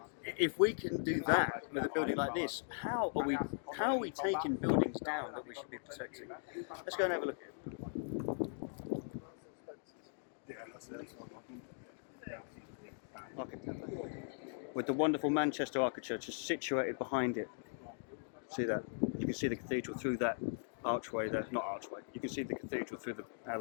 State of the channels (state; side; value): silent; right; digital silence